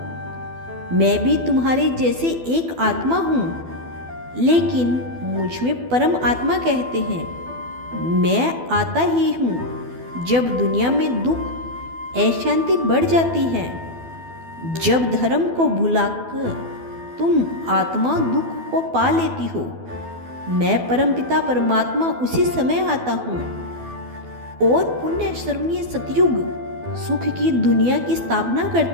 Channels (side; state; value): left; late; 12 ms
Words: मैं भी तुम्हारे जैसे एक आत्मा हूँ, लेकिन मुझ में परम आत्मा कहते हैं। मैं आता ही हूँ जब दुनिया में दुख अशांति बढ़ जाती है, जब धर्म को भुलाकर तुम आत्मा दुख को पा लेती हो। मैं परमपिता परमात्मा उसी समय आता हूँ और पुण्य स्मरणीय सतयुग सुख की दुनिया की स्थापना